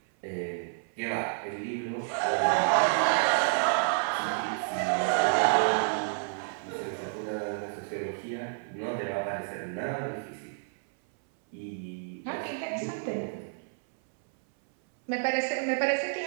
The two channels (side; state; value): left; silent; 58 dB below the other